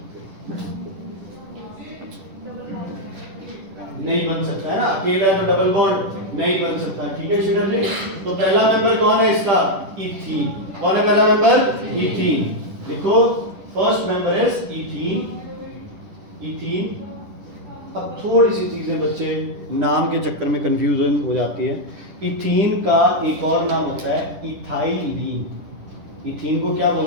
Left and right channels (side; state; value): left; late; 10 ms